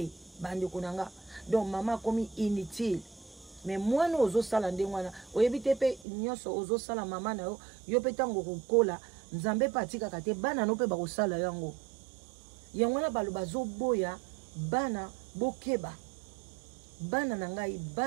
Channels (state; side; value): drops out; left; at 6.1 s